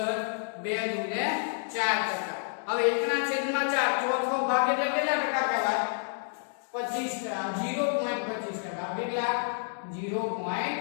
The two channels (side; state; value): right; silent; digital silence